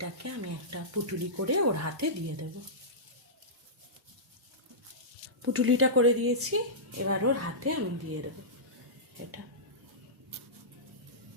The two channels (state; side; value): normal; both; correlation -0.16